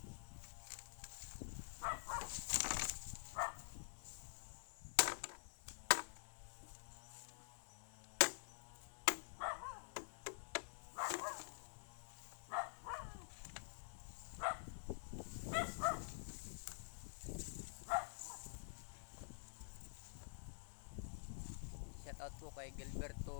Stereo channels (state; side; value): silent; right; digital silence